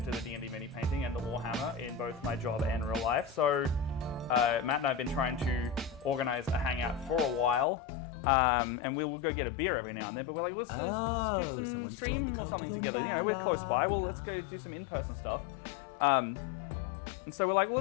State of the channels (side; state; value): right; drops out; at 7.7 s